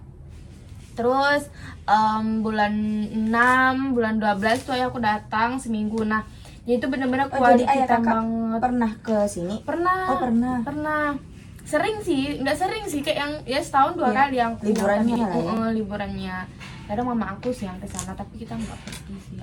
Terus bulan 6, bulan 12 tuh ayah aku datang seminggu. Nah, jadi itu bener-bener Jadi ayah kita kakak banget. pernah ke sini? Pernah. Oh, pernah. Sering sih, nggak sering sih, kayak yang ya setahun 2 kali yang liburannya lah ya. Liburannya. Kadang mama aku sih yang kesana, tapi kita nggak pergi sih.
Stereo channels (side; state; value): both; identical; correlation 1.00